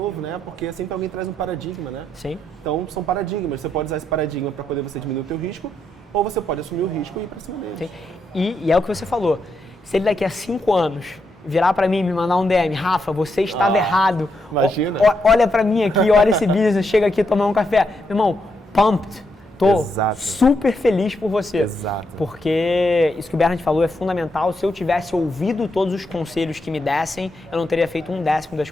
né? Porque sempre alguém traz um paradigma, né? Sim. Então, são paradigmas. Você pode usar esse paradigma para poder você diminuir o teu risco, ou você pode assumir o risco e ir pra cima dele. Sim. E é o que você falou. Se ele daqui a 5 anos virar para mim e me mandar um DM, Rafa, você estava errado. Imagina. Olha para mim aqui, olha esse business, chega aqui tomar um café. Meu irmão, pumped. Tô super feliz por você. Exato. Porque isso que o Bernard falou é fundamental. Se eu tivesse ouvido todos os conselhos que me dessem, eu não teria feito 1/10 das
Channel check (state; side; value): normal; both; correlation 0.80